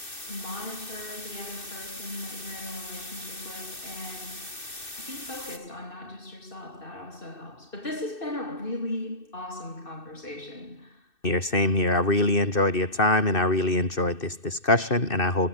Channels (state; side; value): late; right; 2.6 ms